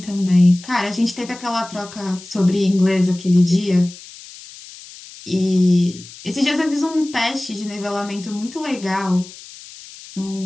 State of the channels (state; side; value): noise; left; hiss, 17 dB below the sound